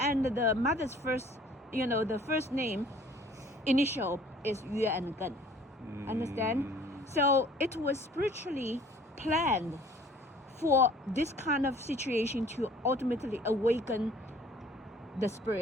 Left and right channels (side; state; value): both; normal; correlation 0.53